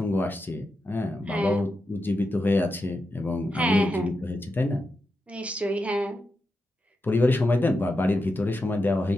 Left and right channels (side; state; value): both; normal; correlation 0.88